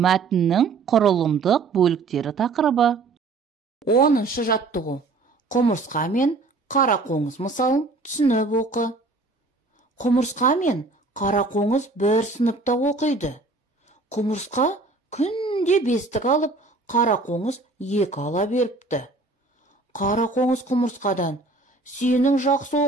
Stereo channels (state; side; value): quieter; left; 3.6 dB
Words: құрылымдық бөліктері тақырыбы. 10-шы жаттығу. Құмырсқа мен қарақоңыз мысалын түсініп оқы. Құмырсқа мен қарақоңыз бір сыныпта оқиды. Құмырсқа күнде 5-тік алып, қарақоңыз 2 ала беріпті. Қарақоңыз құмырсқадан: «Сенің жақсы